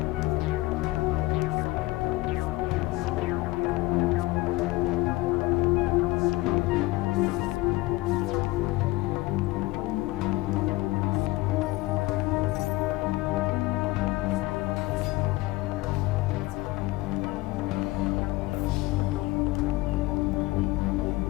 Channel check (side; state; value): right; quieter; 20.2 dB